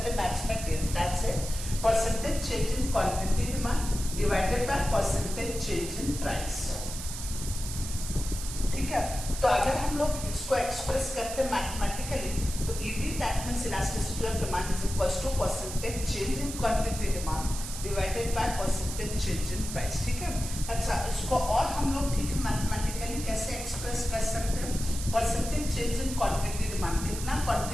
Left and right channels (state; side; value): noise; right; hiss, 8 dB below the sound